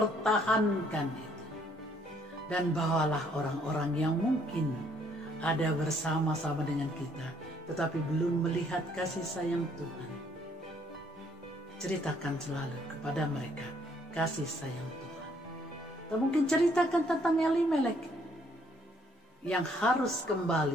itu. Dan bawalah orang-orang yang mungkin ada bersama-sama dengan kita, tetapi belum melihat kasih sayang Tuhan. Ceritakan selalu kepada mereka kasih sayang Tuhan. Atau mungkin ceritakan tentang Elimelek yang harus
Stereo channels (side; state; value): both; normal; correlation 0.66